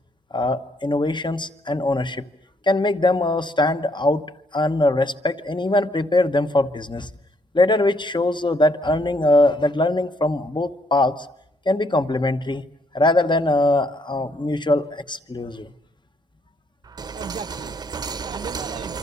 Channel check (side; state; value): both; normal; correlation 0.70